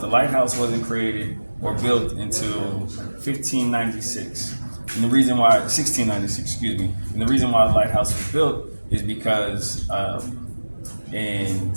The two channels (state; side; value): inverted; both; correlation -1.00